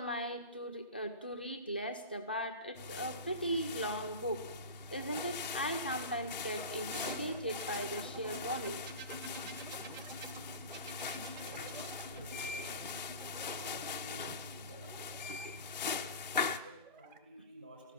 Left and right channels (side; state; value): both; inverted; correlation -0.31